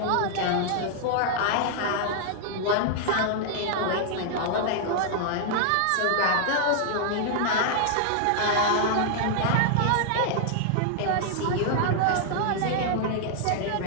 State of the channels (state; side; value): different; both; correlation -0.01